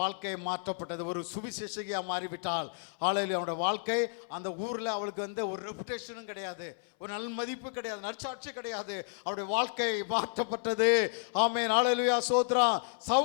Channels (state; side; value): silent; right; 56 dB below the other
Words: வாழ்க்கை மாற்றப்பட்டது. ஒரு சுவிசேஷகியா மாறிவிட்டால் ஆலையிலே அவனுடைய வாழ்க்கை அந்த ஊரில் அவளுக்கு வந்து ஒரு ரெப்புடேஷனும் கிடையாது, ஒரு நல்ல மதிப்பு கிடையாது, நற்சாட்சி கிடையாது. அவருடைய வாழ்க்கை மாற்றப்பட்டது. ஆமென், ஹல்லேலூயா, ஸ்தோத்திரம்.